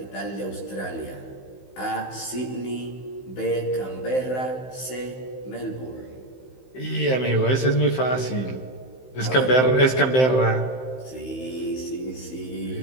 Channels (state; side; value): late; right; 15 ms